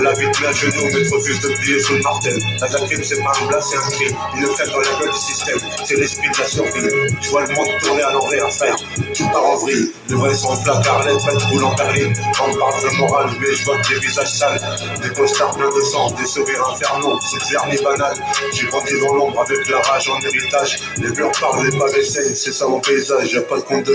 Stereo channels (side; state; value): both; identical; correlation 1.00